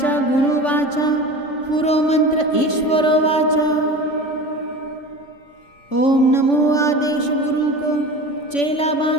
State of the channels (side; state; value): right; late; 3.5 ms